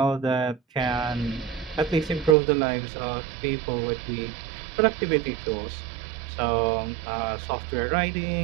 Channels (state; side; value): drops out; left; at 2.4 s